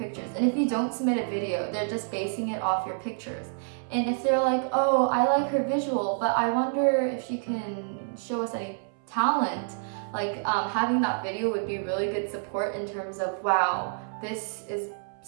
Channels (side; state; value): left; silent; 59 dB below the other